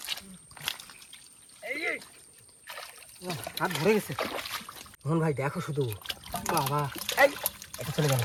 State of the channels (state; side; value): identical; both; correlation 1.00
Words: হাত ভরে গেছে। মোহন ভাই দেখো শুধু, বাবা, এই এটা চলে গেল।